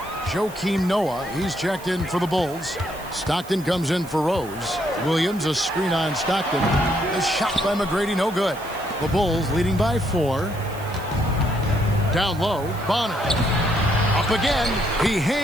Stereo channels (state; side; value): noise; right; hiss, 19 dB below the sound